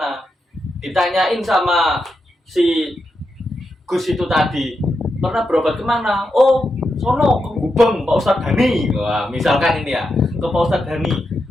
Ditanyain sama si Gus itu tadi, pernah berobat kemana? Oh, sono ke Gubeng Pak Ustadz Dhani. Wah, misalkan ini ya, ke Pak Ustadz Dhani.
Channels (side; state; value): both; normal; correlation 0.86